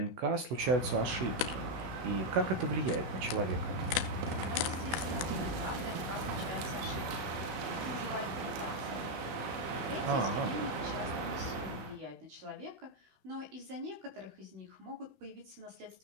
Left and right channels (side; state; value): left; late; 16 ms